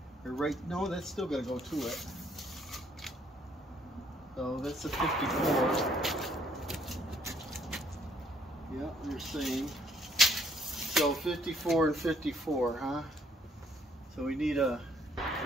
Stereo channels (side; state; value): both; normal; correlation 0.65